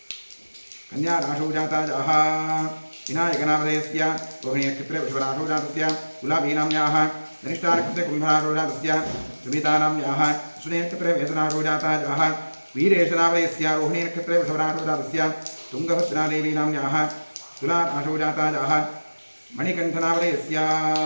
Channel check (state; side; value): inverted; both; correlation -1.00